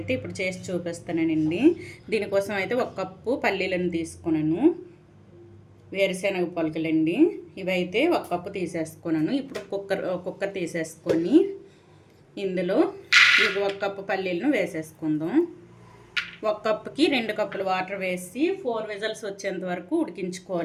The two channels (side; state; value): both; identical; correlation 1.00